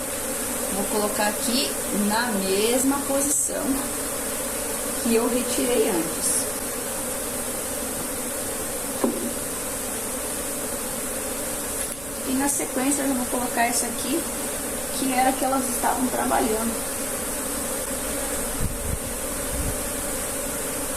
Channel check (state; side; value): noise; right; rumble, 15 dB below the sound